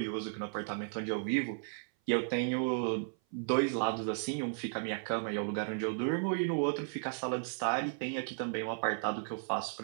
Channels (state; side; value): silent; left; 55 dB below the other